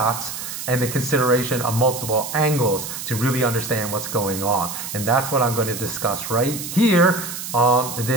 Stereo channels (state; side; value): noise; right; hiss, 7 dB below the sound